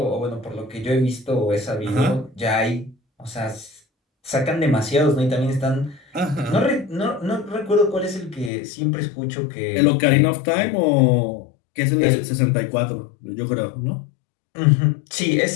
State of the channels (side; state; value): right; drops out; at 8.5 s